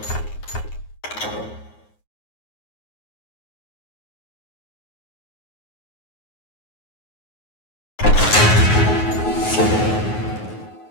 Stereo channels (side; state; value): right; late; 9.5 ms